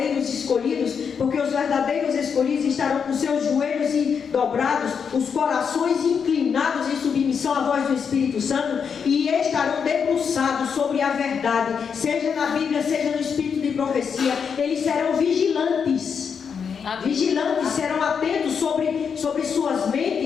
escolhidos, porque os verdadeiros escolhidos estarão com seus joelhos dobrados, os corações inclinados em submissão à voz do Espírito Santo, e estarão debruçados sobre a verdade, seja na Bíblia, seja no Espírito de profecia. Eles serão vigilantes. Vigilantes, serão atentos sobre suas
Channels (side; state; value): right; quieter; 6.6 dB